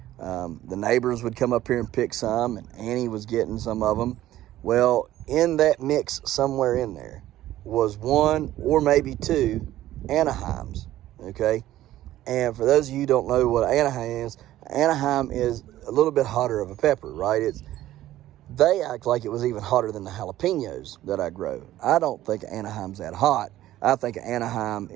the neighbors would come up here and pick some, and Annie was getting some of them. Well, in that mix somewhere in there was 1 or maybe 2 Anaheims, okay? And for those of you who don't know what Anaheim is a little bit hotter of a pepper, right? They act like it was even hotter than the jalapenos that I grow. I don't think Anaheim's that hot. I think Anaheim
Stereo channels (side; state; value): left; quieter; 14.1 dB